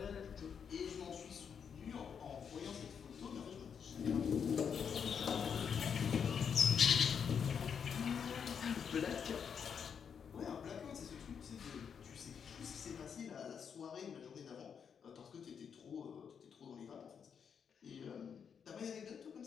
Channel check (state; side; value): quieter; right; 7.1 dB